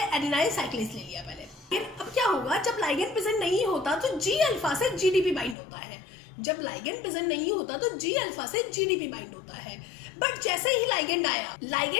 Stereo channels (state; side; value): drops out; right; at 5.6 s